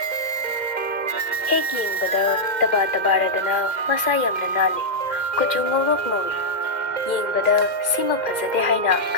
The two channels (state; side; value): late; right; 2.1 ms